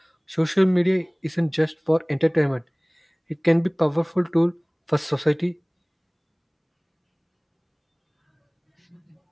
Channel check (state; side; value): identical; both; correlation 1.00